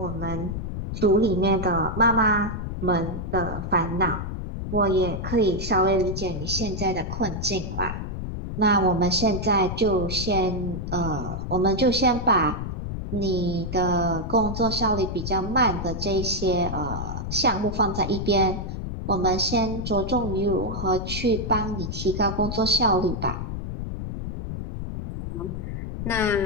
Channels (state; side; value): noise; left; rumble, 5 dB below the sound